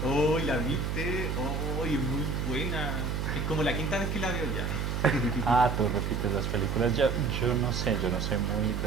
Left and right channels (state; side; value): noise; right; hum, 1 dB below the sound